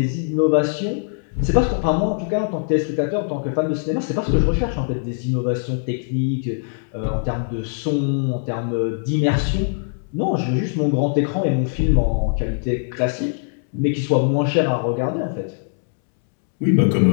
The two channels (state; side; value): silent; right; 65 dB below the other